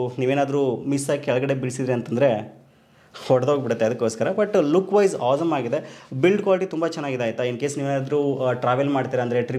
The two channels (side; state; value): both; identical; correlation 1.00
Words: ನೀವೇನಾದರೂ ಮಿಸ್ ಆಗಿ ಕೆಳಗಡೆ ಬಿಡಿಸಿದ್ರಿ ಅಂತಂದರೆ ಹೊಡೆದೋಗ್ಬಿಡುತ್ತೆ, ಅದಕ್ಕೋಸ್ಕರ. ಬಟ್ ಲುಕ್ ವೈಸ್ ಆಸಮ್ ಆಗಿದೆ. ಬಿಲ್ಡ್ ಕ್ವಾಲಿಟಿ ತುಂಬ ಚೆನ್ನಾಗಿದೆ ಆಯಿತಾ. ಇನ್ ಕೇಸ್ ನೀವೇನಾದರೂ ಟ್ರಾವೆಲ್ ಮಾಡ್ತೀರಾ ಅಂದರೆ,